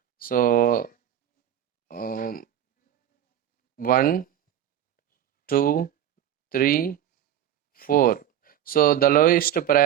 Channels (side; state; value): left; quieter; 10.8 dB